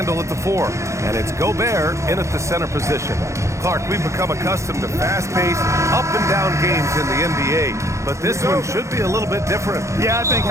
at the 4. And it's Gobert in at the center position. Clark, we've become accustomed to fast-paced, up-and-down games in the NBA. But this one should be a little bit different. Yeah, I think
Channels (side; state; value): left; late; 0.14 ms